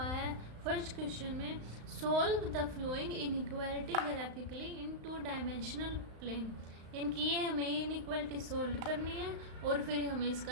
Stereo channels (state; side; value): late; left; 35 ms